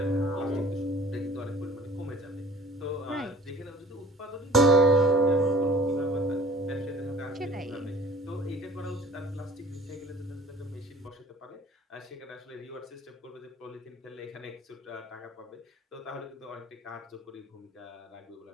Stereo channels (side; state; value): both; normal; correlation 0.46